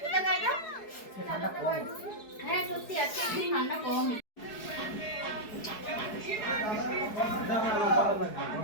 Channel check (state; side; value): late; right; 4.7 ms